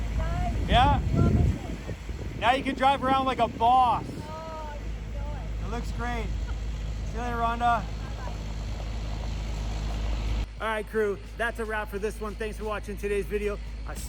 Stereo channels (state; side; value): identical; both; correlation 1.00